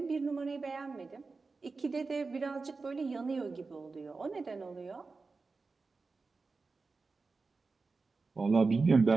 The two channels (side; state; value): left; quieter; 4.1 dB